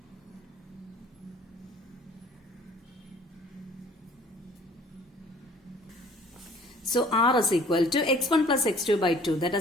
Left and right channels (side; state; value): both; normal; correlation 0.53